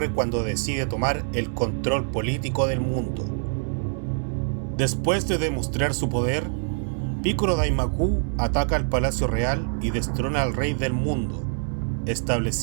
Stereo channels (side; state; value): left; silent; digital silence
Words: cuando decide tomar el control político del mundo. Después de demostrar su poder, Picoro Daimaku ataca al Palacio Real y destrona al Rey del Mundo,